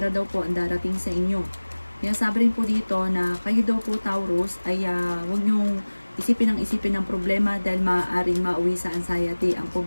daw po ang darating sa inyo. Sabi rin po dito na kayo daw po, Taurus, ay huwag niyong isipin ng problema dahil maaaring mauwi sa anxiety ang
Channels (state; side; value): inverted; both; correlation -1.00